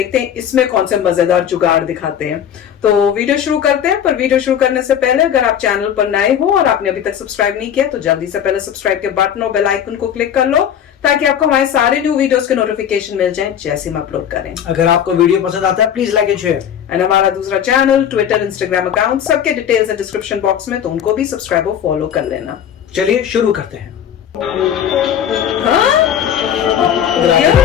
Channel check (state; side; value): quieter; right; 9.3 dB